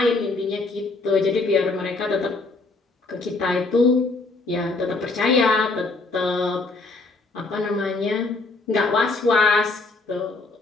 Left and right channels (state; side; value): quieter; right; 3.5 dB